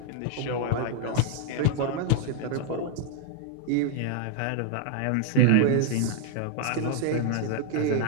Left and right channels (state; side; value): different; both; correlation 0.00